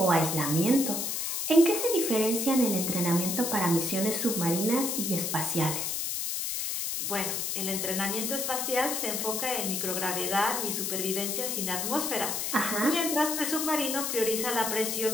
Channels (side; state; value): left; noise; hiss, 1 dB below the sound